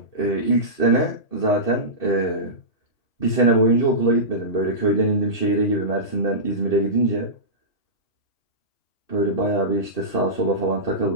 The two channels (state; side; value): late; right; 2.5 ms